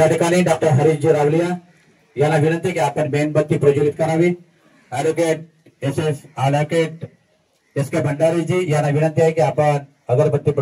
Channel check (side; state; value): both; identical; correlation 1.00